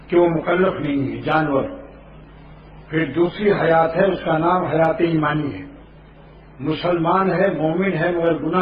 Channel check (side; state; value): both; identical; correlation 1.00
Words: کیوں مکلف نہیں ہے جانور. پھر دوسری حیات ہے، اس کا نام حیات ایمانی ہے. مسلمان ہے، مومن ہے، مگر